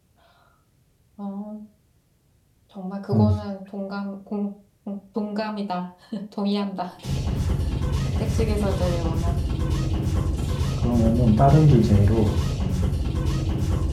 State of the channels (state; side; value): identical; both; correlation 1.00